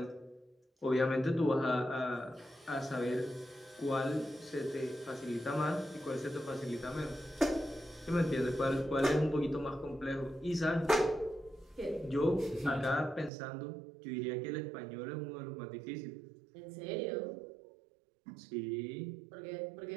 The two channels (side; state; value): left; drops out; at 13.3 s